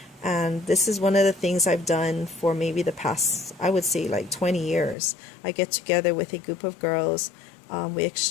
And this is one of the things I've done for maybe the past, I would say, like 20 years. I get together with a group of girls. We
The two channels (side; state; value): right; drops out; at 5.0 s